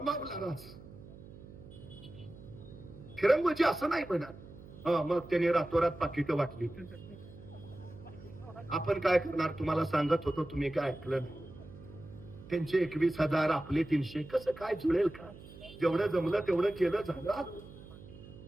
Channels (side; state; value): right; noise; hum, 17 dB below the sound